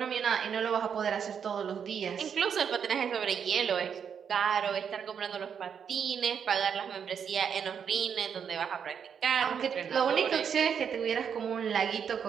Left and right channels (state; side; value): quieter; left; 7.4 dB